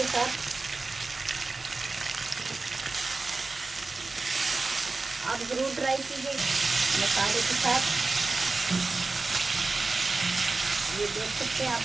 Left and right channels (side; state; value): left; quieter; 3.7 dB